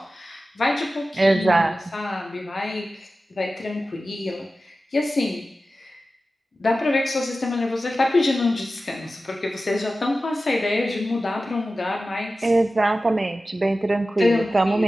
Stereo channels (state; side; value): normal; both; correlation 0.94